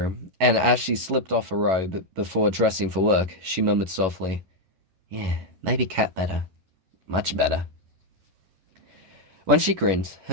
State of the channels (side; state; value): left; late; 11 ms